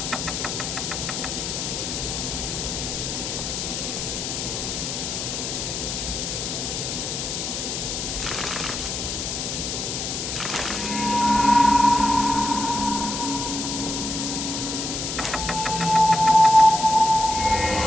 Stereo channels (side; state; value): left; noise; hiss, 3 dB below the sound